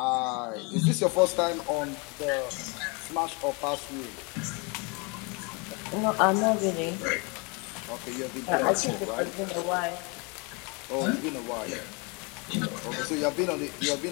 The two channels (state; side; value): quieter; right; 30.9 dB